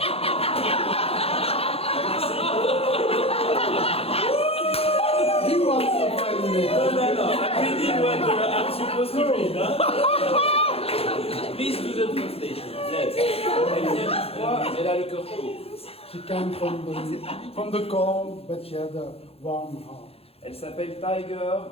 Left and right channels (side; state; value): right; late; 0.29 ms